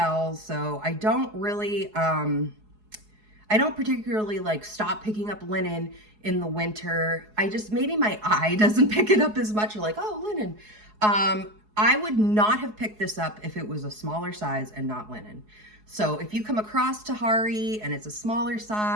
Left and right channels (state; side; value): late; left; 4.7 ms